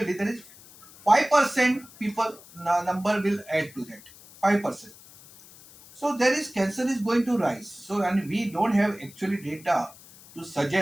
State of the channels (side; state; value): left; noise; hiss, 22 dB below the sound